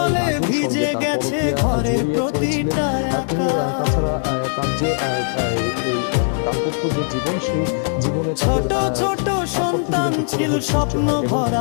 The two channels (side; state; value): right; silent; digital silence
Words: ভিজে গেছে ঘরের প্রতিটা একা। তাছাড়া তার যে দাম্পত্য যে জীবন, সেই জীবনে ছোট ছোট সন্তান ছিল স্বপ্ন